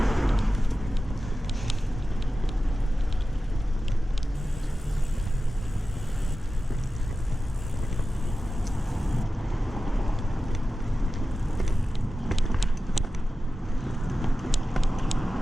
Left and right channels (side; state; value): both; normal; correlation 0.94